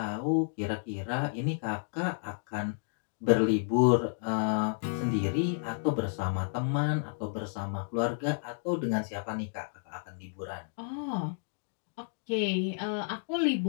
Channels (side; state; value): right; silent; digital silence